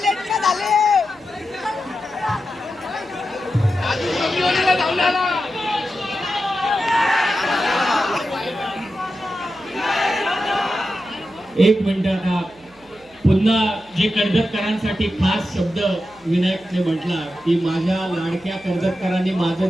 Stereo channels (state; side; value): noise; right; hum, 30 dB below the sound